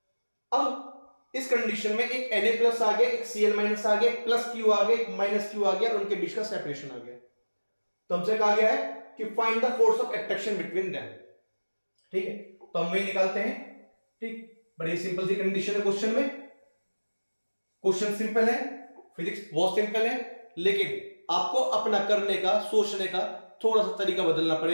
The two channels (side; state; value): both; inverted; correlation -1.00